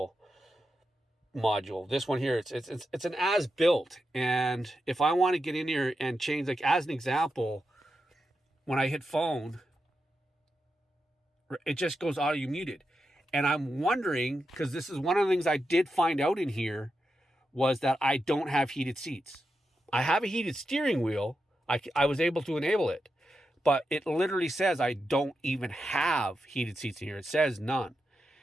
module. This one here, it's an as built. And if I want to get in here and change, like as an example, when I hit phone, it just goes audio muted. And I'm wondering, because this is one of the things I did find out in here, was that I don't have heated seats. I have a heated steering wheel. I was able to enable it, but it literally says I don't even have heated seats in here. It says none.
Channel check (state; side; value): normal; both; correlation 0.88